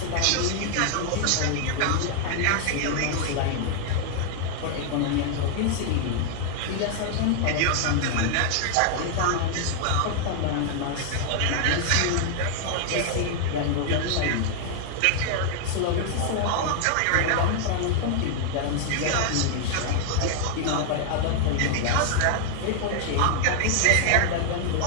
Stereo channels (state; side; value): different; both; correlation 0.00